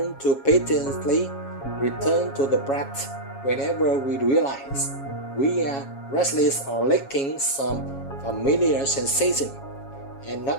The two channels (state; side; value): late; right; 7.3 ms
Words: to patiently return to the breath whenever we realize we are restless or lacking some familiar sensation, and not